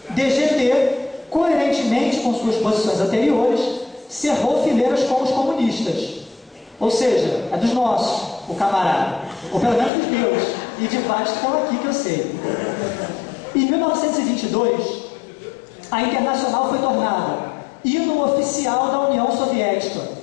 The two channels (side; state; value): right; drops out; at 9.9 s